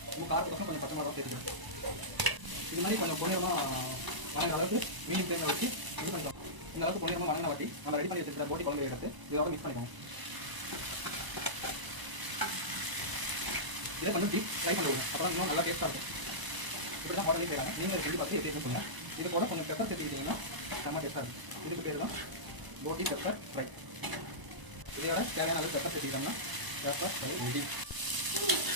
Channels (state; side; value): late; left; 1.0 ms